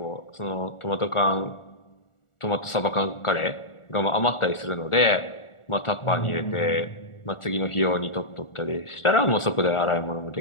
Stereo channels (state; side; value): late; right; 1.4 ms